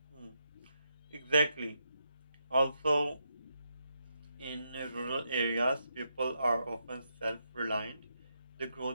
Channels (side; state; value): both; inverted; correlation -0.82